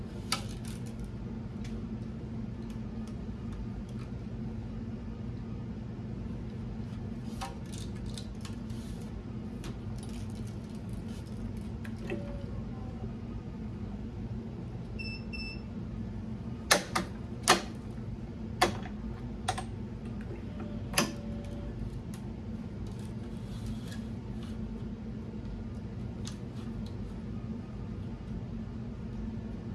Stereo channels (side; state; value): both; identical; correlation 1.00